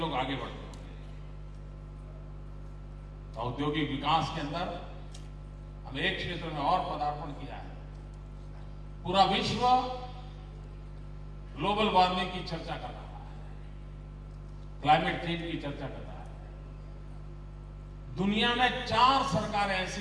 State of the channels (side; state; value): both; identical; correlation 1.00